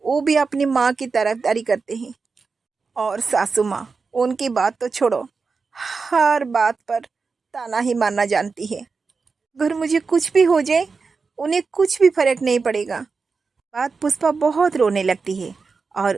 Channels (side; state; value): left; quieter; 4.7 dB